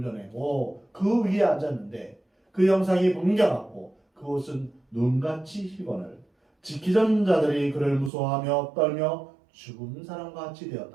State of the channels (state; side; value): drops out; left; at 8.1 s